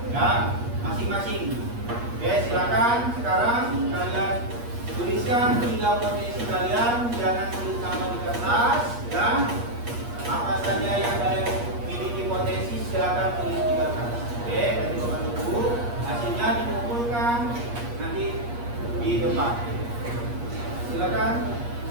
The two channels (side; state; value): left; late; 8.4 ms